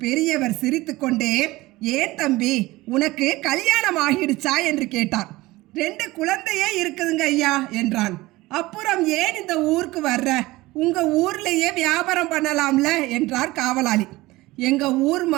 பெரியவர் சிரித்துக்கொண்டே, ஏன் தம்பி, உனக்கு கல்யாணம் ஆகிடுச்சா என்று கேட்டார். 2 குழந்தையே இருக்குதுங்க ஐயா என்றான். அப்புறம் ஏன் இந்த ஊருக்கு வர்ற? உங்க ஊர்லேயே வியாபாரம் பண்ணலாம்ல என்றார் காவலாளி. எங்க ஊர்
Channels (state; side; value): quieter; left; 19.5 dB